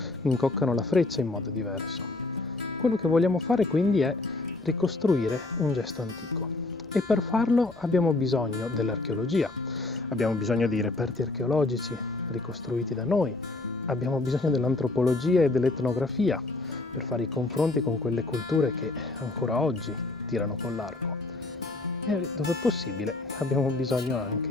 incoccano la freccia in modo diverso. Quello che vogliamo fare quindi è ricostruire un gesto antico. E per farlo abbiamo bisogno dell'archeologia, abbiamo bisogno di reperti archeologici ricostruiti da noi, abbiamo bisogno dell'antropologia e dell'etnografia per fare i confronti con quelle culture che ancora oggi tirano con l'arco. E dove possibile abbiamo bisogno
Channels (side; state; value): right; quieter; 3.1 dB